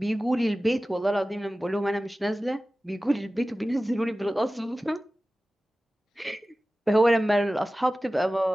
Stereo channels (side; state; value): both; normal; correlation 0.96